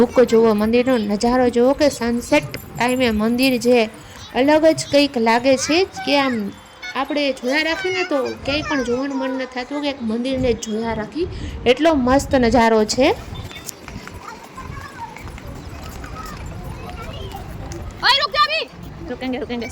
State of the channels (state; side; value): identical; both; correlation 1.00